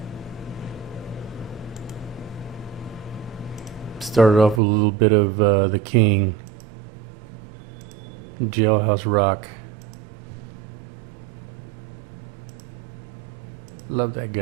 Started off with a little bit of the King, Jailhouse Rock. Love that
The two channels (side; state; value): left; drops out; at 4.6 s